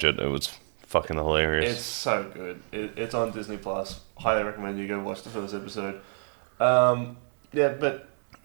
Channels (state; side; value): silent; left; 59 dB below the other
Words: it. It was fucking hilarious. It's so good. It's on Disney Plus. Highly recommend you go watch the first episode. Yeah, but